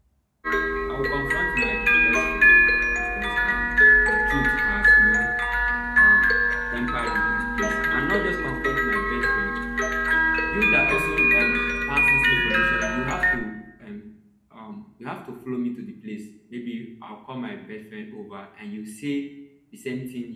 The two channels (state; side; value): identical; both; correlation 1.00